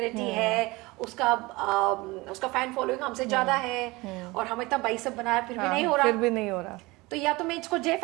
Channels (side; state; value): left; quieter; 22.5 dB